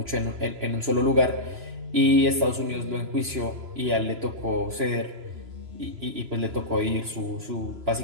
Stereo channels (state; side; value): late; left; 3.0 ms